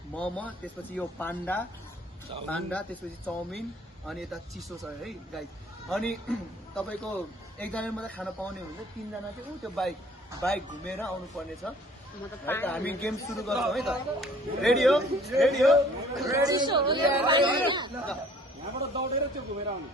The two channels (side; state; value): both; normal; correlation 0.54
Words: मोमो, त्यसपछि यो पान्डा, त्यसपछि चाउमिन, अनि यता चिसो छ है गाइस। अनि तपाईँको एकजनाले मात्रै खान पाउने हुन्छ, 3 जना चाहिँ त्यो बाइक घुमेर आउनु पर्ने छ है त। हामी गेम सुरु गर्छौँ है त। रेडी हो? रेडी हो? रेडी यहाँबाट दौडेर त्यो घुमेर आउनु।